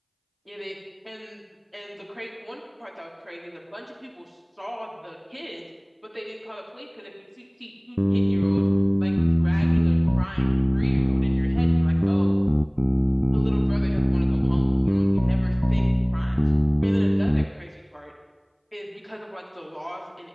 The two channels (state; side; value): identical; both; correlation 1.00